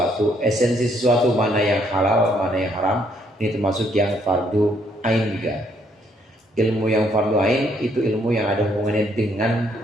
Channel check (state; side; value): normal; both; correlation 0.69